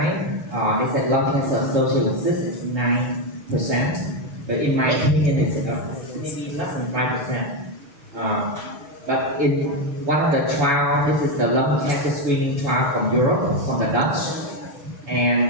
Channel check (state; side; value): late; left; 7.0 ms